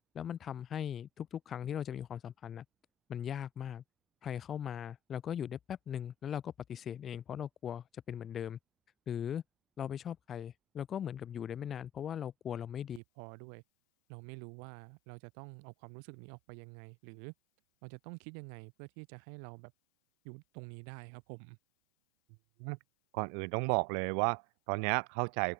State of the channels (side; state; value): left; drops out; at 13.0 s